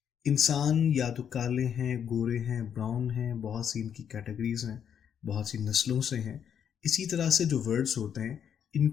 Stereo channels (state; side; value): quieter; right; 8.4 dB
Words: इंसान या तो काले हैं, गोरे हैं, ब्राउन हैं, बहुत सी इनकी कैटेगरीज हैं, बहुत सी नस्लों से हैं। इसी तरह से जो वर्ड्स होते हैं